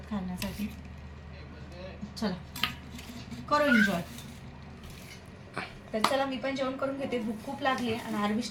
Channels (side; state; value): both; identical; correlation 1.00